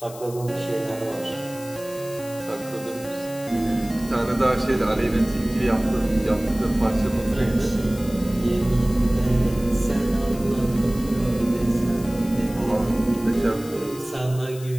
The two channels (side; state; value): left; noise; hiss, 17 dB below the sound